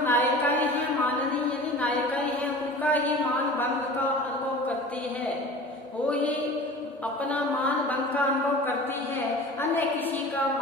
नायिकाएं हैं, माननीय यानी नायिकाएं हैं, उनका ही मान भंग का अनुभव करती है। वो ही अपना मान भंग का अनुभव करती है। अन्य किसी का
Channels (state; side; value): normal; both; correlation 0.39